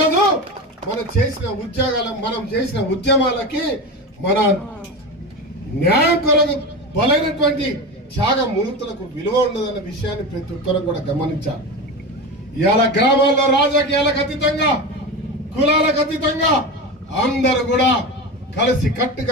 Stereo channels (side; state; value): both; normal; correlation 0.24